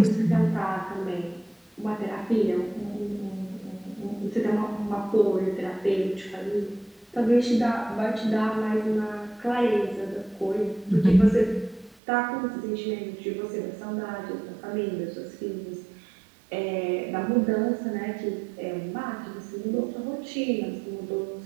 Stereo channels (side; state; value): left; drops out; at 12.0 s